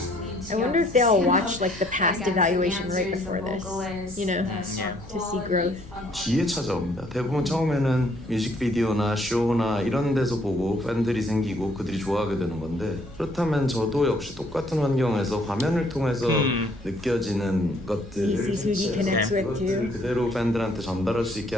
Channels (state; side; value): normal; both; correlation 0.64